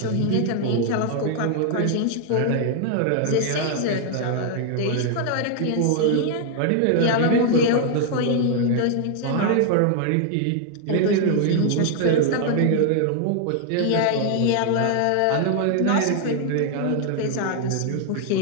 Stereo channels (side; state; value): both; different; correlation 0.00